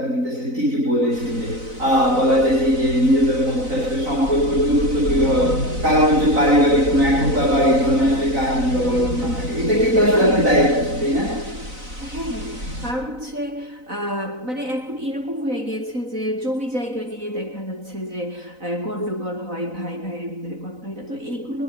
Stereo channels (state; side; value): late; left; 4.0 ms